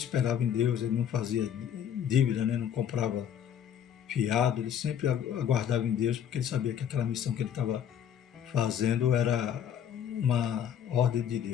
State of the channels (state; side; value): quieter; right; 9.1 dB